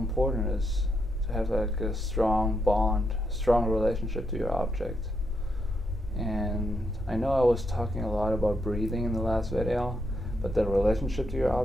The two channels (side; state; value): both; normal; correlation 0.80